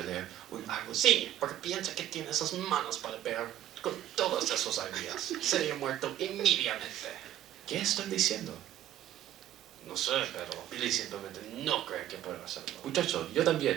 Sí, porque piensa que tiene esas manos para ver con todas esas ideas. Sería muerto inmediatamente. ¿Qué estoy diciendo? No sé, pero Billy simplemente no cree que pueda hacerlo. Muchacho, yo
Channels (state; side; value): quieter; left; 12.3 dB